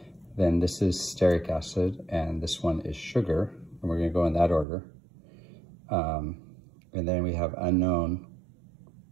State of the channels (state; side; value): drops out; left; at 4.7 s